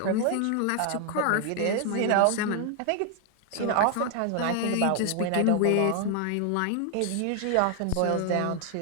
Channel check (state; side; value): different; both; correlation 0.00